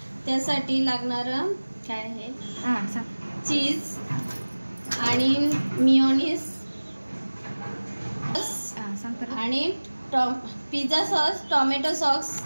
त्यासाठी लागणारं काय आहे चीज आणि मियोनीज आणि पिझ्झा सॉस, टोमॅटो सॉस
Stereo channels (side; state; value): both; inverted; correlation -1.00